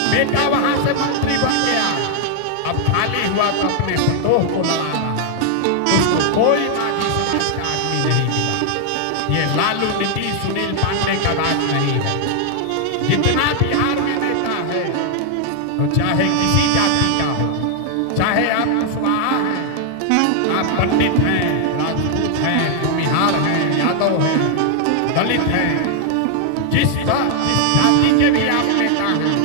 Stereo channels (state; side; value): different; both; correlation 0.00